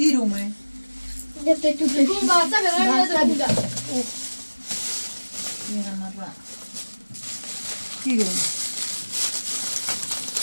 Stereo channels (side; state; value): both; inverted; correlation -1.00